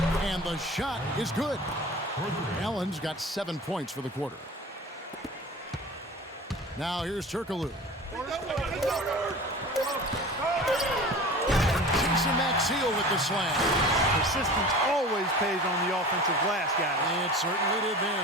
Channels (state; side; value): normal; both; correlation 0.38